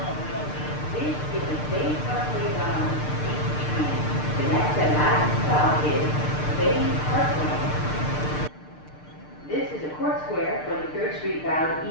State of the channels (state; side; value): late; right; 6.7 ms